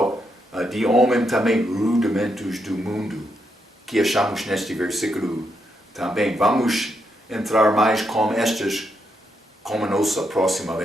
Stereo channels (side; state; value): both; normal; correlation 0.80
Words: de homem também rudimentos do mundo, que achamos neste versículo também. Vamos entrar mais com estas como nossa próxima